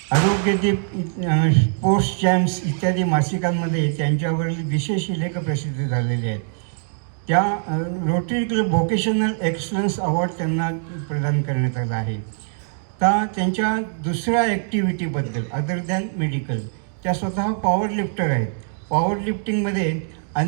आरोग्यदीप, स्पोर्ट्स चॅम्प्स इत्यादी मासिकांमध्ये त्यांच्यावरील विशेष लेख प्रसिद्ध झालेले आहेत. त्या rotary club vocational excellence award त्यांना प्रदान करण्यात आला आहे. त्यांच्या दुसऱ्या ॲक्टिव्हिटीबद्दल अदर दॅन मेडिकल, त्या स्वतः पॉवर लिफ्टर आहेत. पॉवर लिफ्टिंगमध्ये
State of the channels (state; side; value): silent; left; digital silence